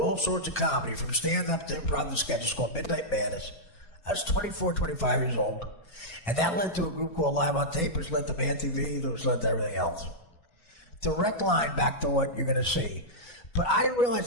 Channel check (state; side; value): late; right; 4.3 ms